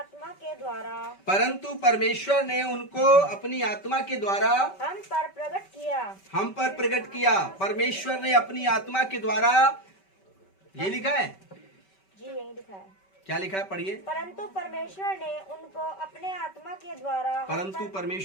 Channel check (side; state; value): right; late; 5.2 ms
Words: के द्वारा परंतु परमेश्वर ने उनको अपनी आत्मा के द्वारा हम पर प्रकट किया। परमेश्वर ने अपनी आत्मा के द्वारा, ये लिखा है जी, यही लिखा है। क्या लिखा है, पढ़िए। परंतु परमेश्वर ने उनको अपने आत्मा के द्वारा परंतु